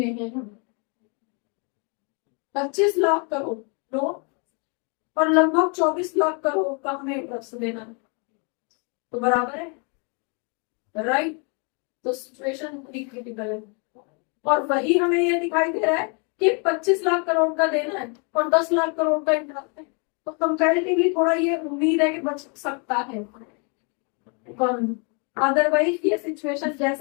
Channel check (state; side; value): quieter; right; 36.0 dB